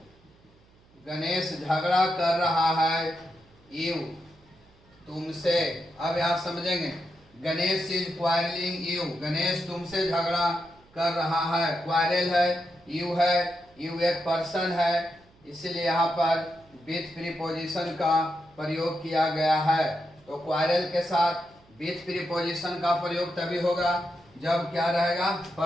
गणेश झगड़ा कर रहा है यू, तुमसे। अब आप समझेंगे, Ganesh is quarrelling you, Ganesh तुमसे झगड़ा कर रहा है। क्वारल है, यू एक पर्सन है, इसलिए यहाँ पर विथ प्रीपोजिशन का प्रयोग किया गया है। तो क्वारल के साथ विथ प्रीपोजिशन का प्रयोग तभी होगा जब क्या रहेगा,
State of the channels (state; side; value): noise; right; hum, 30 dB below the sound